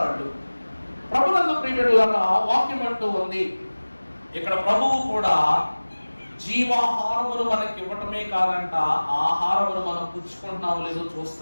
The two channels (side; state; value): both; inverted; correlation -1.00